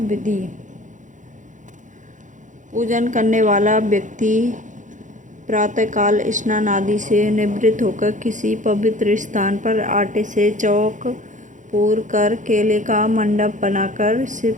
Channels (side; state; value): left; late; 0.36 ms